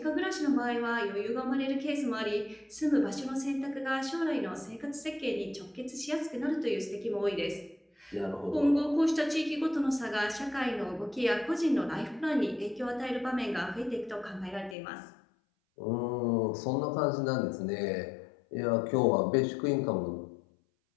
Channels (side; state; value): right; drops out; at 14.8 s